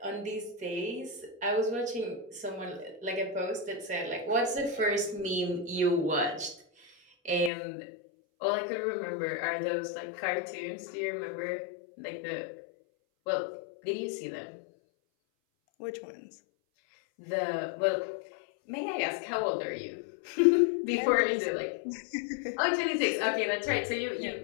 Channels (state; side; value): drops out; right; at 7.5 s